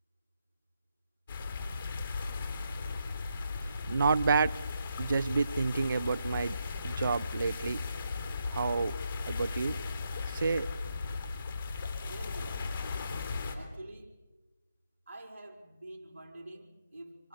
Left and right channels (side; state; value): both; inverted; correlation -0.81